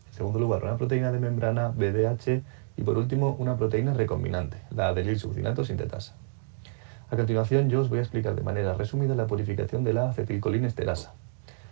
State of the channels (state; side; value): silent; left; 59 dB below the other